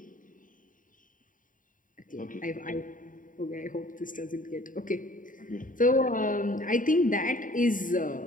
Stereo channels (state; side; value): late; right; 0.39 ms